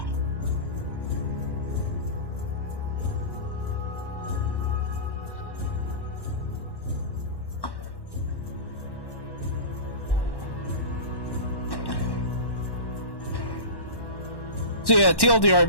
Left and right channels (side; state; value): right; late; 1.1 ms